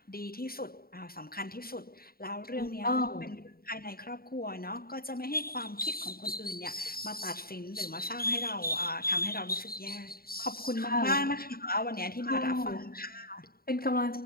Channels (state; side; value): late; right; 0.43 ms